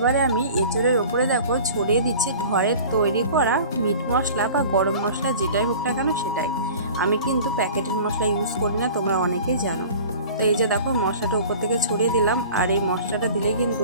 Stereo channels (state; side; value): inverted; both; correlation -0.43